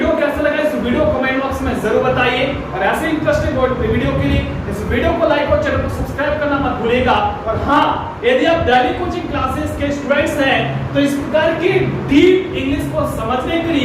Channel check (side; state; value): both; identical; correlation 1.00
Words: कैसा लगा इस वीडियो को कमेंट बॉक्स में जरूर बताइए, और ऐसे इंटरेस्टिंग वीडियो के लिए इस वीडियो को लाइक और चैनल को सब्सक्राइब करना मत भूलिएगा। और हाँ, यदि आप डेली कोचिंग क्लासेस के स्टूडेंट्स हैं तो इस प्रकार की डीप इंग्लिश को समझने के